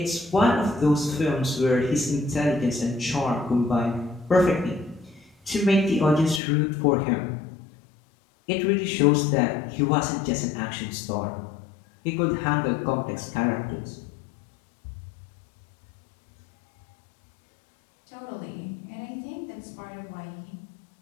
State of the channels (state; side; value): drops out; right; at 6.4 s